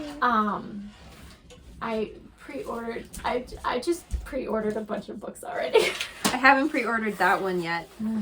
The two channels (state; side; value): identical; both; correlation 1.00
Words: I pre-ordered, I just pre-ordered a bunch of books already. I haven't pre-ordered that one yet,